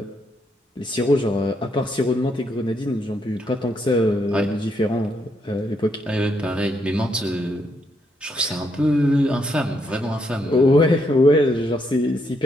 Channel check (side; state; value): both; normal; correlation 0.77